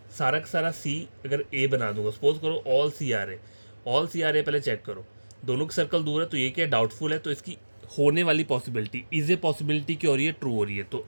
सारा का सारा सी अगर ए बना दूंगा, सपोज करो all C are A, all C are ए पहले चेक करो, दोनों के सर्कल दूर है, तो ये क्या डाउटफुल है, तो इसकी होने वाली पॉसिबिलिटी इज ए पॉसिबिलिटी क्या हो रही है, ट्रू हो रही है, तो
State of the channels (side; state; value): both; inverted; correlation -1.00